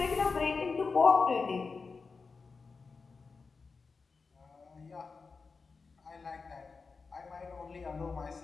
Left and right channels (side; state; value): right; quieter; 4.6 dB